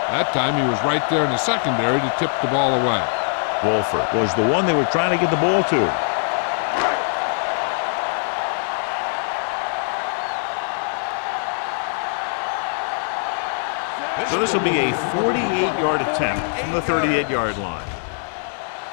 That time he was right there in the secondary to tip the ball away. Wolford was the one they were trying to get the ball to. So this will be a 48-yard attempt from the 38-yard line.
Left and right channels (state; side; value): silent; right; 64 dB below the other